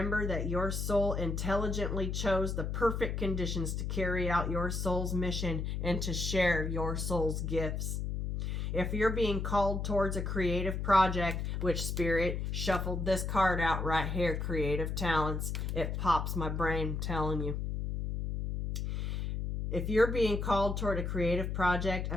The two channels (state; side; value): noise; left; hum, 2 dB below the sound